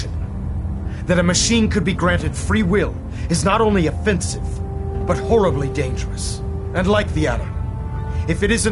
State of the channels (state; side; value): identical; both; correlation 1.00